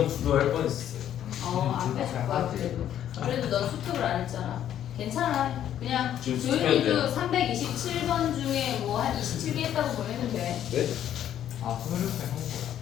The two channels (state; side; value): quieter; right; 10.7 dB